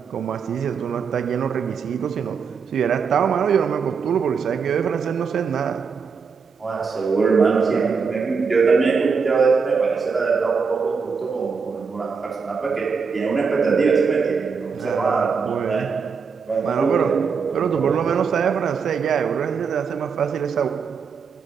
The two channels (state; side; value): quieter; left; 5.6 dB